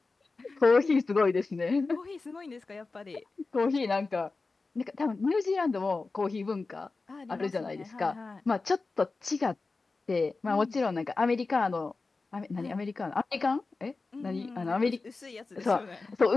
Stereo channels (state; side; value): quieter; right; 3.8 dB